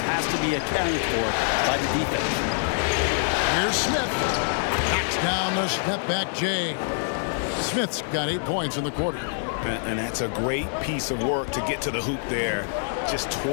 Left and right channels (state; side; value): silent; right; digital silence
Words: has to be accounted for by the defense. Here's Smith. Knocks down the step-back J. Smith's got 8 points in the quarter. And that's a great piece of work to get to the hoop there. Just